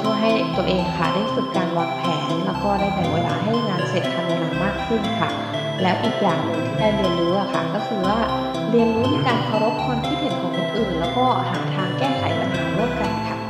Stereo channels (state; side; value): identical; both; correlation 1.00